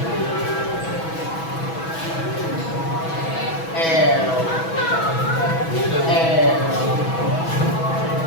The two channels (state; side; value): late; right; 6.1 ms